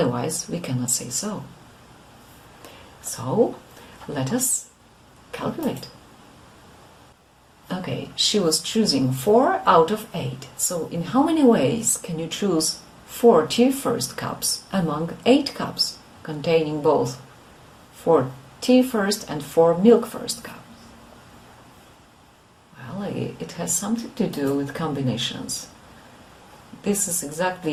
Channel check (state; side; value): identical; both; correlation 1.00